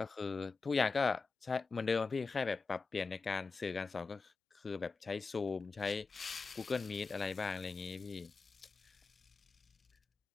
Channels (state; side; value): quieter; right; 4.4 dB